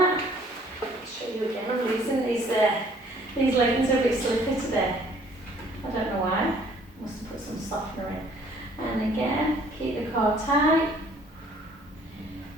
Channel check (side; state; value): both; normal; correlation 0.58